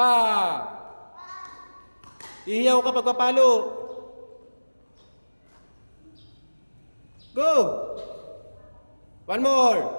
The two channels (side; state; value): both; inverted; correlation -1.00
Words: Ihiyaw ka pagpapalo. Go. One more.